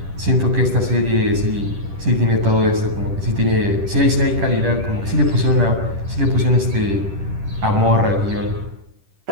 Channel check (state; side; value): late; left; 10 ms